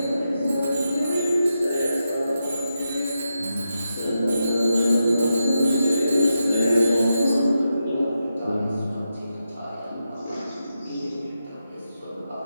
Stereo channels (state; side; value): inverted; both; correlation -0.87